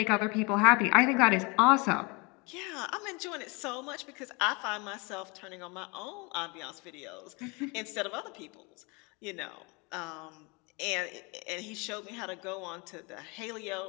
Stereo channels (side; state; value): right; quieter; 28.9 dB